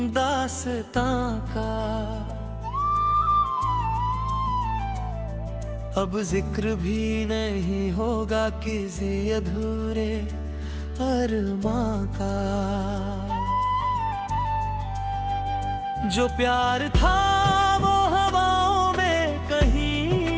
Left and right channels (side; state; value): both; identical; correlation 1.00